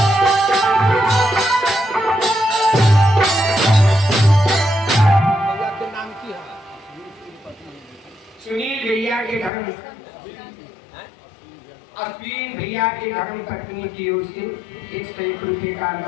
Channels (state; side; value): drops out; right; at 9.5 s